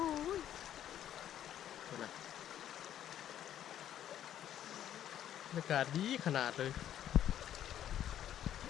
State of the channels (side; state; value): right; quieter; 11.0 dB